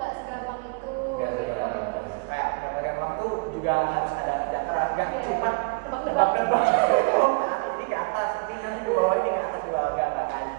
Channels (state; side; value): quieter; left; 33.5 dB